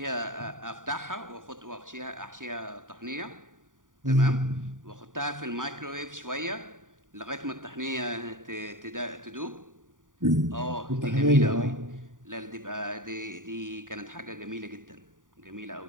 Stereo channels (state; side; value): late; left; 0.88 ms